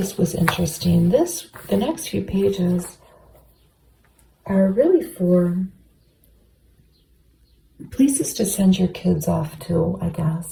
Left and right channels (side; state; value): both; identical; correlation 1.00